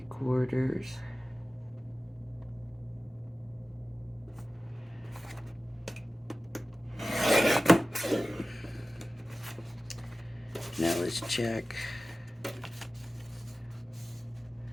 Now let's check.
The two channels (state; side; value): normal; both; correlation 0.96